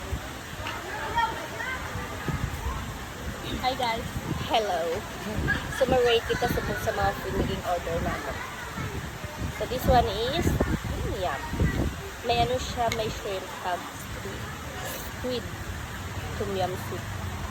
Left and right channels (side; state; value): both; identical; correlation 1.00